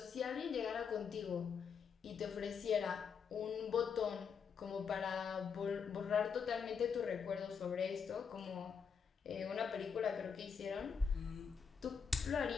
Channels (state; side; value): quieter; right; 6.4 dB